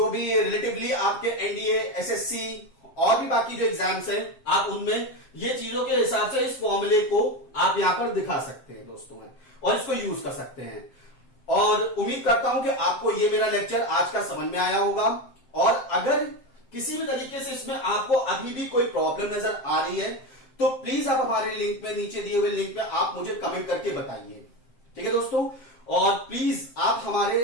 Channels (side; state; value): right; late; 7.5 ms